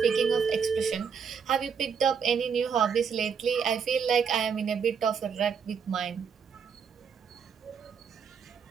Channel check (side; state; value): left; quieter; 6.6 dB